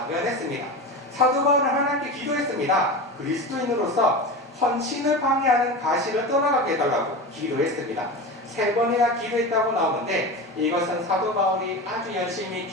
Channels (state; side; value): normal; both; correlation 0.26